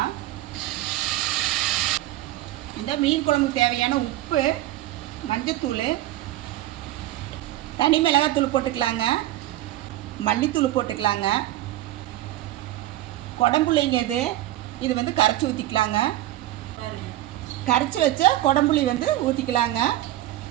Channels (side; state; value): left; quieter; 15.1 dB